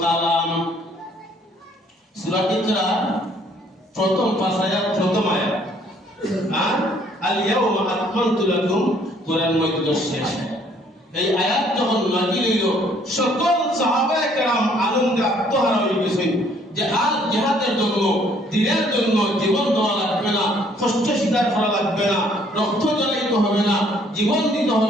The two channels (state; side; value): normal; both; correlation 0.62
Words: কলম। সূরা ইকরা প্রথম পাঁচ আয়াত প্রথম আয়াত। আর আল ইয়াউমা আকমালতু লাকুম কোরআন মধ্যে শেষ। এই আয়াত যখন নাযিল হইল সকল সাহাবায়ে কেরাম আনন্দে আত্মহারা হয়ে গেছেন। জিহাদের জন্য দ্বীনের জন্য জীবন দেওয়া লাগবে না, কষ্ট স্বীকার করা লাগবে না, রক্ত জ্বালাইতে হবে না, জীবন দিতে